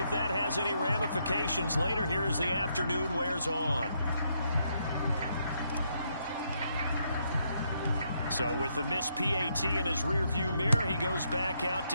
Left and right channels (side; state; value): both; inverted; correlation -0.76